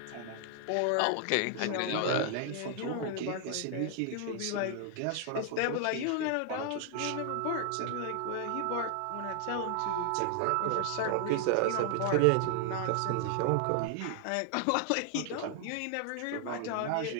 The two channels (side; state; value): both; different; correlation 0.00